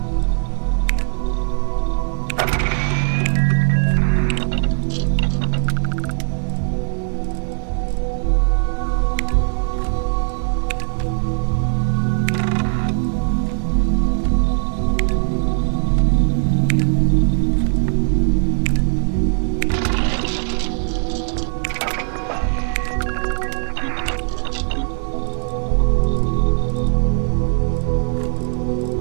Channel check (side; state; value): left; silent; 64 dB below the other